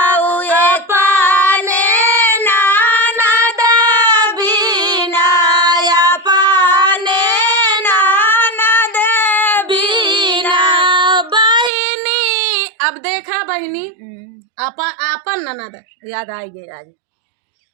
अब देखा बहनी अपन ननद याद आई गई आज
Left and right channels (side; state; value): left; drops out; at 11.7 s